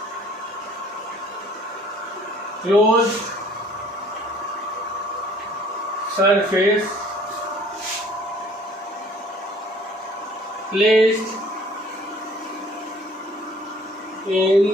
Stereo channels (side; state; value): both; normal; correlation 0.54